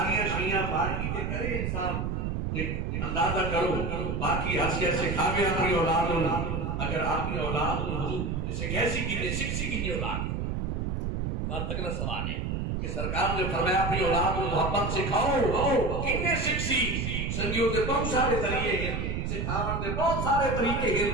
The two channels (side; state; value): right; noise; rumble, 1 dB below the sound